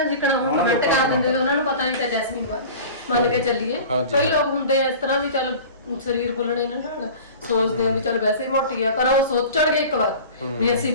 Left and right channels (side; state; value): both; inverted; correlation -0.38